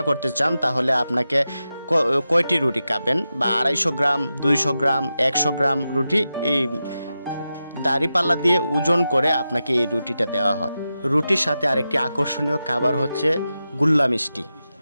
করতে চান তাহলে আপনাকে কয়টি রুটি খাবেন, বা 250 গ্রাম, 200 গ্রাম, 100 গ্রাম রুটি এই দাঁড়িপাল্লা দিয়ে ওজন করে আপনাকে এই রুটিটা দেওয়া হয়। রুটির সাথে আরেকটি আকর্ষণীয় খাবার হচ্ছে গুল্লা মিষ্টি।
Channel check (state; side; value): inverted; both; correlation -0.91